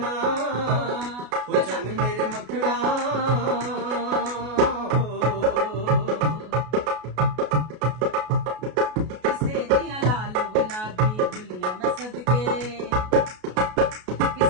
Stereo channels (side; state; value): left; late; 33 ms